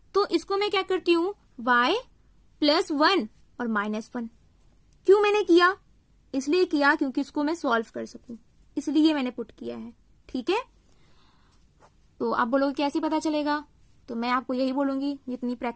तो इसको मैं क्या करती हूँ, y प्लस 1 और माइनस 1, क्यों मैंने किया, इसलिए किया क्योंकि इसको मैं सॉल्व कर सकूं, इसलिए मैंने पुट किया है, ठीक है। तो आप बोलोगे कैसे पता चलेगा, तो मैं आपको यही बोलूंगी, जितनी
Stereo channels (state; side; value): identical; both; correlation 1.00